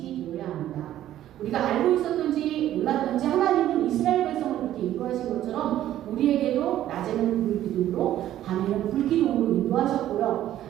되어야 합니다. 우리가 알고 있었든지 몰랐든지 하나님은 이스라엘 백성을 그렇게 인도하신 것처럼 우리에게도 낮에는 불기둥으로 밤에는 불기둥으로 인도하셨고요.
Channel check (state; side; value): quieter; left; 12.6 dB